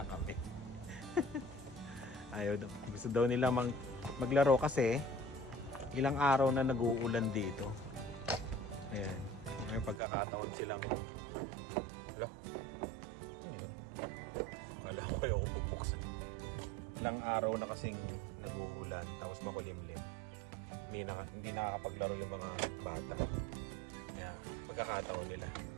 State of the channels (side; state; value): left; drops out; at 10.0 s